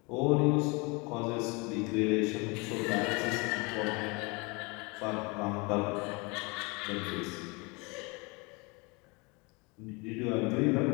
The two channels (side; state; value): right; quieter; 28.4 dB